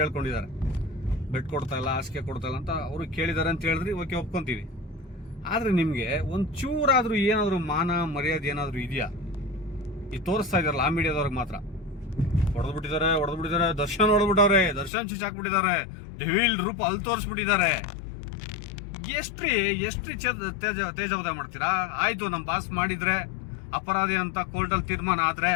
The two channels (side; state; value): right; drops out; at 14.9 s